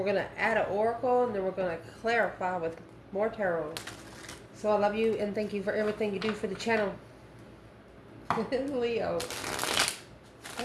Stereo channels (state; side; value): identical; both; correlation 1.00